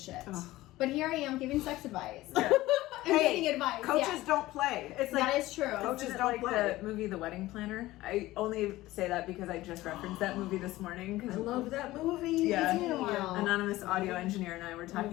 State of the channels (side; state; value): right; quieter; 17.4 dB